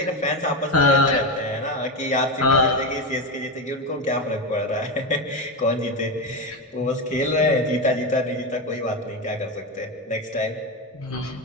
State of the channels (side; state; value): both; normal; correlation 0.14